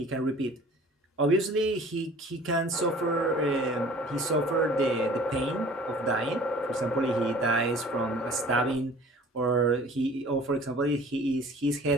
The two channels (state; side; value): normal; both; correlation 0.48